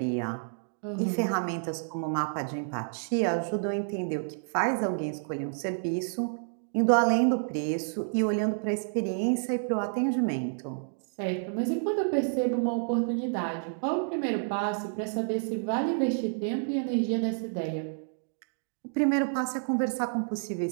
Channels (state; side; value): silent; left; digital silence